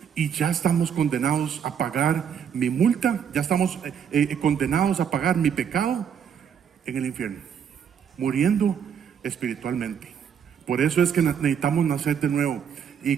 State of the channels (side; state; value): left; quieter; 7.9 dB